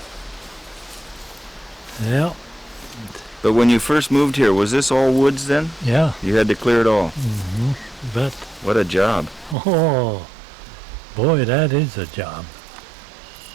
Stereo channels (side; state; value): left; drops out; at 9.6 s